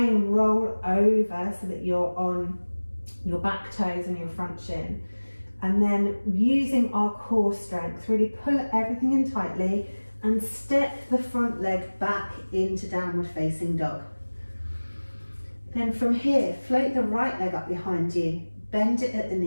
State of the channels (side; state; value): both; inverted; correlation -1.00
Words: roll over so that you're on your back toes and your front shin. And then using our core strength, really pull everything in tightly and step the front leg back into downward facing dog. Then from here, float the right leg up behind you, bend it at the